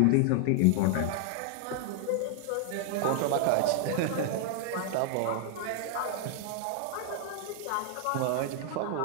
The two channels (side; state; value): both; different; correlation 0.00